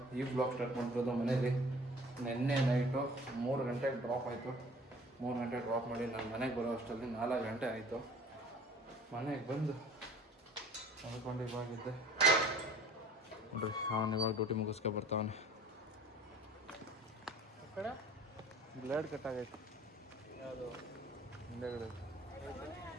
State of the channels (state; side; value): normal; both; correlation 0.49